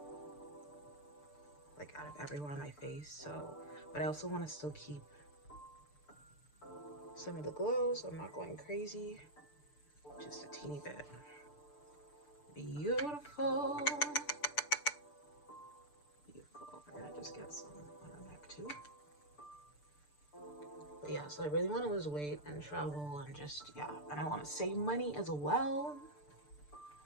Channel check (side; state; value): right; late; 6.8 ms